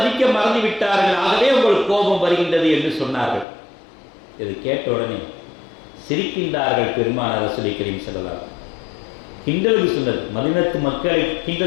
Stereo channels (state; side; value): drops out; right; at 3.5 s